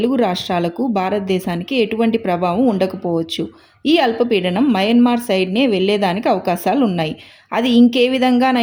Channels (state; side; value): identical; both; correlation 1.00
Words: రాష్ట్రాలకు భారతదేశానికి ఎటువంటి ప్రభావం ఉండకపోవచ్చు. ఈ అల్పపీడనం మయన్మార్ సైడ్నే వెళ్లేదానికి అవకాశాలు ఉన్నాయి. అది ఇంకే